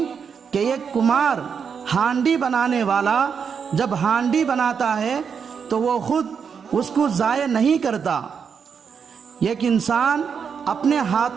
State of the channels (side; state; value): left; quieter; 6.6 dB